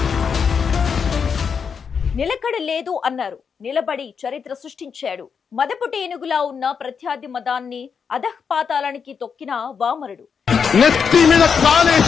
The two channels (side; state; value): right; quieter; 6.4 dB